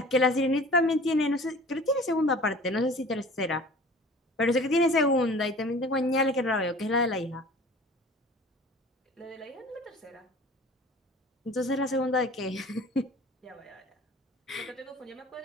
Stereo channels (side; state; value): both; normal; correlation 0.44